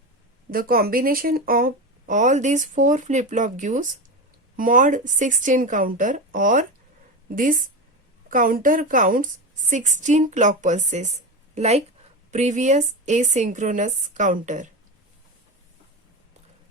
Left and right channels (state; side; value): normal; both; correlation 0.20